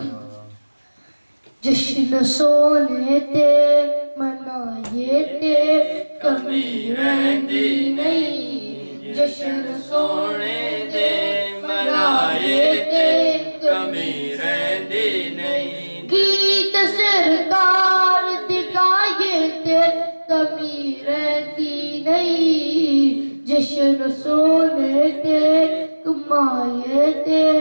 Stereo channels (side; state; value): both; inverted; correlation -1.00